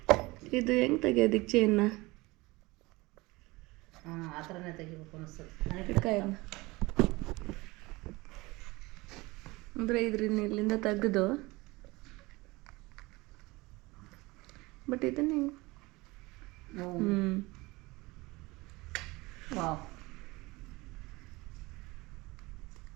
ಇದು ಹೆಂಗೆ ತೆಗಿಯೋದಿಕ್ಕೆ ಚೈನ್ನ? ಆ ಥರನೇ ತೆಗಿಬೇಕು ಅನಿಸ್ತದೆ. ಅಂದರೆ ಇದ್ರಿಂದ ಇಲ್ಲಿಂದ ತೆಗೆದು, ಬಟ್ ಇದನ್ನ ಹೆಂಗೆ? ವಾವ್,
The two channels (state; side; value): quieter; left; 22.4 dB